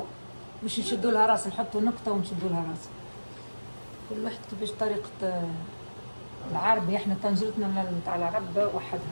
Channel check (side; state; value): both; inverted; correlation -1.00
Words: مش نشدوا لها راس نحطوا نقطه ونشدوا لها راس. كل واحد كيفاش طريقه العربي. احنا طنجرتنا نتاع العرب